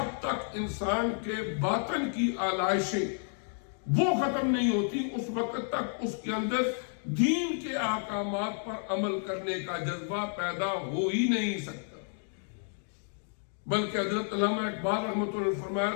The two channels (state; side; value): silent; right; 57 dB below the other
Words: تک انسان کے باطن کی آلائشیں وہ ختم نہیں ہوتی اس وقت تک اس کے اندر دین کے احکامات پر عمل کرنے کا جذبہ پیدا ہو ہی نہیں سکتا۔ بلکہ حضرت علامہ اقبال رحمۃ اللہ علیہ فرمایا